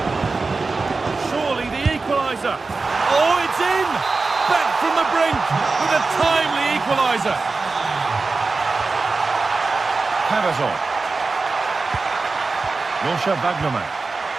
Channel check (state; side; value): quieter; left; 3.9 dB